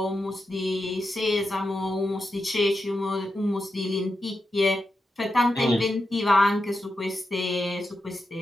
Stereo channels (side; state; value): both; normal; correlation 0.87